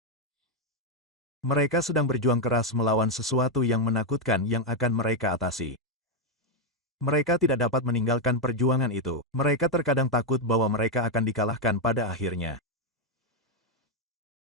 Mereka sedang berjuang keras melawan sesuatu yang menakutkan yang akan mereka atasi. Mereka tidak dapat meninggalkan perjuangan itu. Mereka terkadang takut bahwa mereka akan dikalahkan pada akhirnya.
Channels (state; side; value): normal; both; correlation 0.03